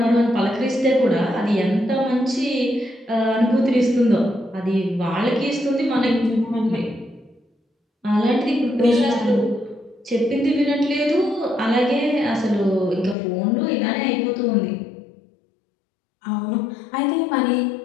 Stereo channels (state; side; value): drops out; right; at 13.2 s